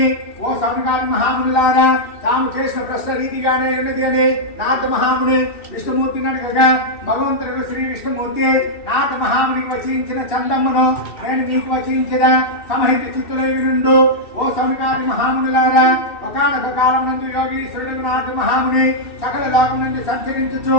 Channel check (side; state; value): right; late; 2.7 ms